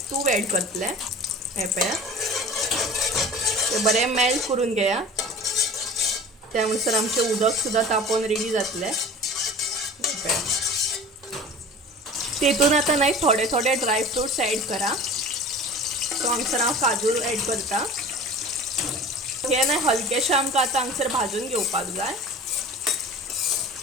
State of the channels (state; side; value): normal; both; correlation 0.40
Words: तूप एड करतले. हे पळया ते बरें मेल्ट करून घेया. त्या अनुसार आमचें उदक सुद्दां तापोवन रेडी जातलें. तेतून आतां न्हय थोडे थोडे ड्राय फ्रुट्स एड करा. सो हांगसर हांव काजू एड करता. हे न्हय हलकेशे आमकां आतां हांगसर भाजून घेवपाक जाय.